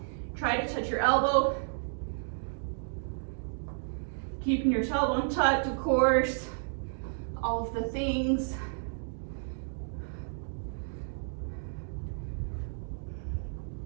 Try to touch your elbow. Keeping your tailbone tucked, of course. All of the things.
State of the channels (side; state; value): left; silent; digital silence